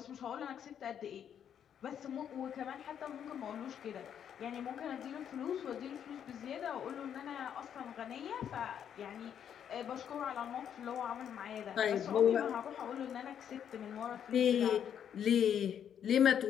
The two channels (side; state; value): right; quieter; 8.9 dB